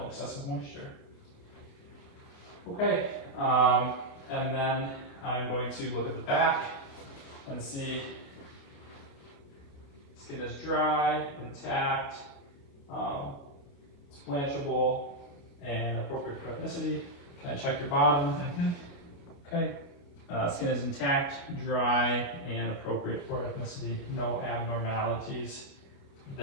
excessive moisture. Okay, and then I'm going to look at the back and see skin is dry, intact, it's blanchable, and appropriate for ethnicity. Can I check your bottom? Okay. Skin is intact, dry, and appropriate for ethnicity. No abnormalities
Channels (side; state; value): right; late; 29 ms